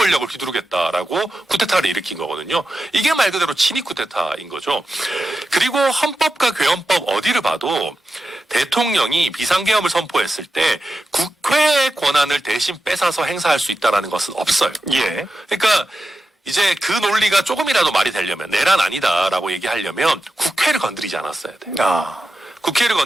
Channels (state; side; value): normal; both; correlation 0.90